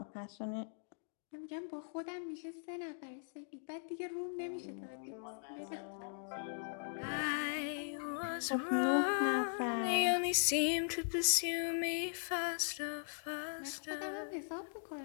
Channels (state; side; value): silent; right; digital silence